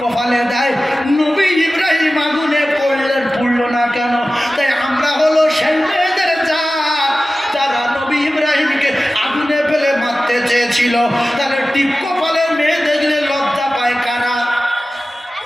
দেয়, নবী ইব্রাহিম আগুনে পড়লো না কেন? তাই আমরা হলো সেই মেয়েদের যারা নবী ইব্রাহিমকে আগুনে ফেলে মারতে চেয়েছিল। তাহলে টিপ কপালে মেয়ে দেখলে লজ্জা পায় কারা?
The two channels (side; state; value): both; normal; correlation 0.95